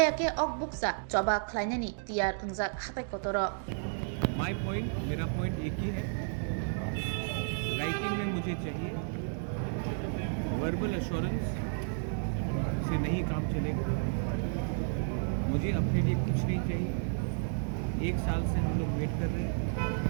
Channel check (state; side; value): silent; left; digital silence